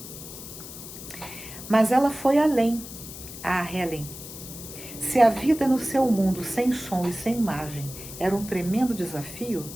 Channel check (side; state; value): left; noise; hiss, 12 dB below the sound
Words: Mas ela foi além, a Helen. Se a vida no seu mundo sem som e sem imagem era um tremendo desafio,